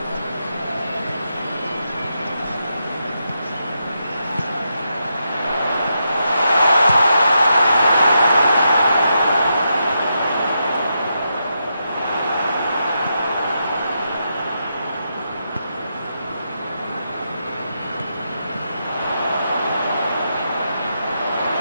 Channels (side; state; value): both; inverted; correlation -0.84